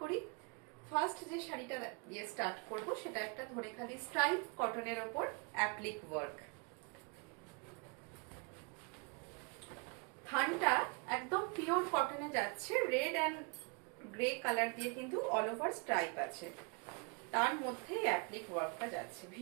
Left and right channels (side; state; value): left; quieter; 32.8 dB